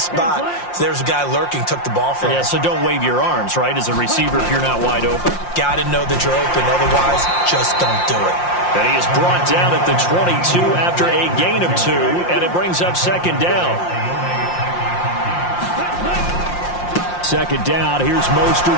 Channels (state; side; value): late; right; 5.7 ms